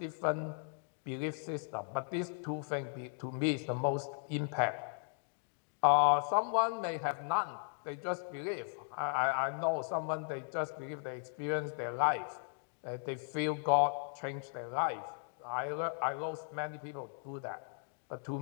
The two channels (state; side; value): silent; right; 53 dB below the other